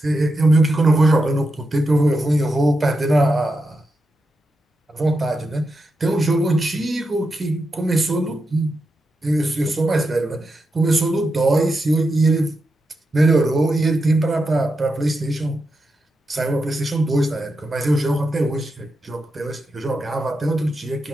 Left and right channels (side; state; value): both; normal; correlation 0.87